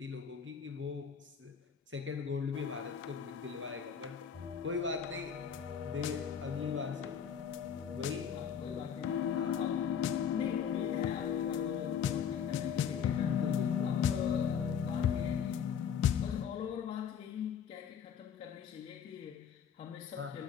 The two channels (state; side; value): quieter; right; 7.7 dB